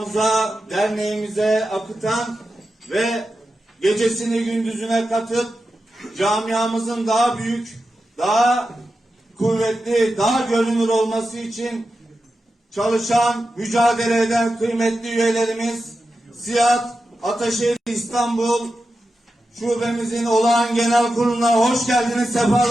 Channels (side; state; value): both; normal; correlation 0.91